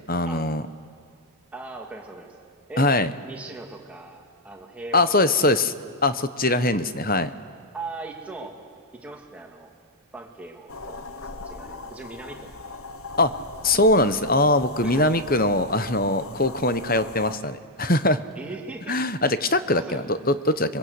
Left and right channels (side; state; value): both; normal; correlation 0.01